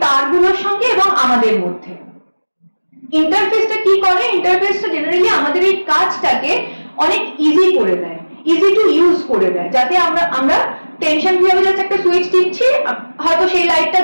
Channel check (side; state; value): both; inverted; correlation -1.00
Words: তারগুলোর সঙ্গে এবং আমাদের মধ্যে। ইন্টারফেসটা কি করে, ইন্টারফেসটা জেনারেলি আমাদের এই কাজটাকে অনেক ইজি করে দেয়, ইজি টু ইউজ করে দেয়, যাতে আমরা টেনশন ফ্রি হবে, জাস্ট একটা সুইচ টিপছি, হয়তো সেই লাইটটা